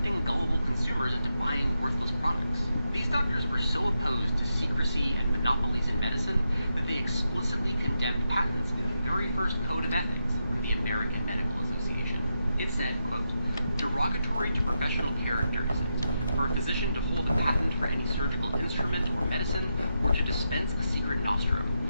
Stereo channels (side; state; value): both; inverted; correlation -0.85